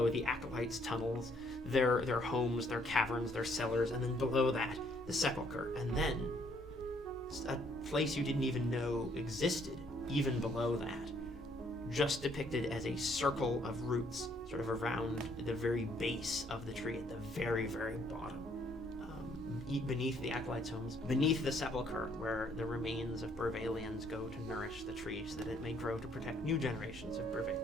the acolytes' tunnels, their homes, their caverns, their cellars, and then below that the sepulchre, and then a place you didn't even know existed even below that, just depicted as a circle of roots sort of around the very base of the tree at the very, very bottom, beneath the acolytes' homes, beneath the sepulchre where the remains of Burrvalians go to nourish the tree so that it may grow to protect new generations of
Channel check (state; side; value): normal; both; correlation 0.66